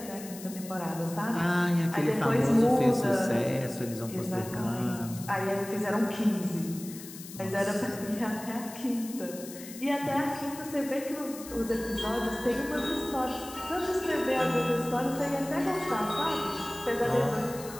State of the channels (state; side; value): noise; left; hiss, 14 dB below the sound